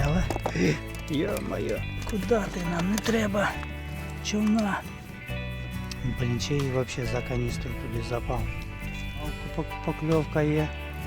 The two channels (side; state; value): both; identical; correlation 1.00